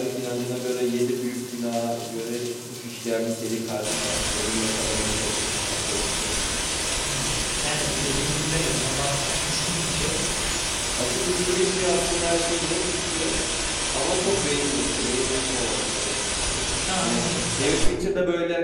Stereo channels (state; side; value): identical; both; correlation 1.00